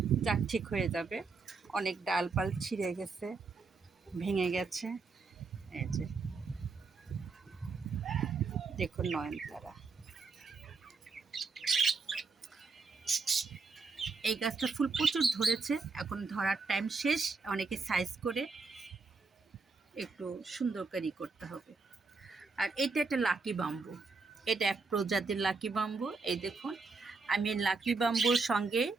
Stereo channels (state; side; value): quieter; left; 4.3 dB